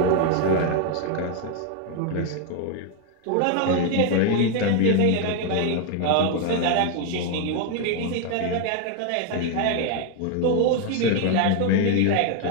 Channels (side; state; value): both; different; correlation 0.01